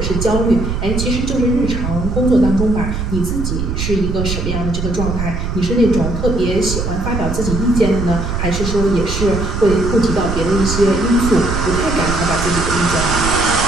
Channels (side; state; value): right; noise; rumble, 3 dB below the sound